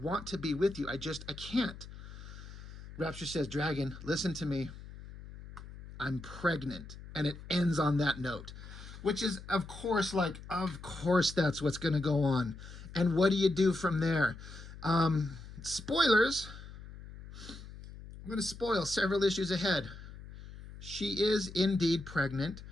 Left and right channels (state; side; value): noise; left; hum, 14 dB below the sound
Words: to be with you. I can't. Rapture says, Dragon, listen to me. I'm pregnant. And it ends on that note. Which is, of course, that's what's going to go on. And what do you do from there? Spoilers. I'm going to spoil several issues ahead. She is indeed pregnant.